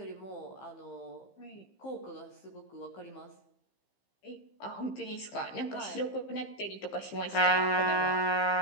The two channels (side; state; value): right; late; 15 ms